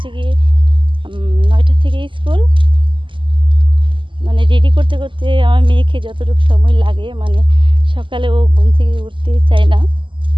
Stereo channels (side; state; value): left; late; 0.24 ms